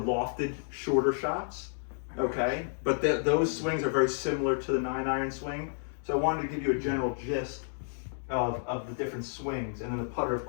shorter shots. Okay, but those swings are very similar to the 9-iron swing. So I wanted to give you a general gist of the different swings, and then the putter, of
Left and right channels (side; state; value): right; silent; digital silence